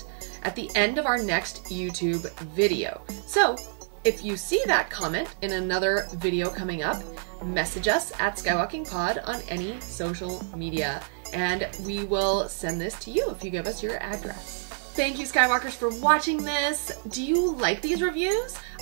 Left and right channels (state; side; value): silent; left; 60 dB below the other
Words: at the end of our next YouTube video. So if you see that comment in another video coming up, message us at SkywalkingPod on any social media, and we will send this to you if you give us your address. Thank you, Skywalkers, for watching this. Do you like these reviews?